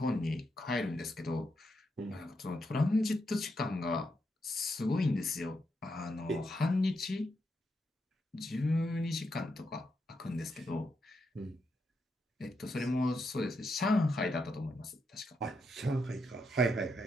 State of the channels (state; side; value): normal; both; correlation 0.82